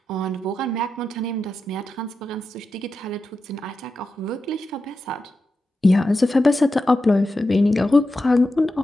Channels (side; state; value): both; normal; correlation 0.90